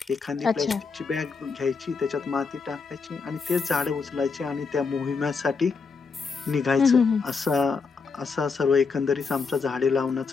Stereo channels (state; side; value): quieter; right; 4.9 dB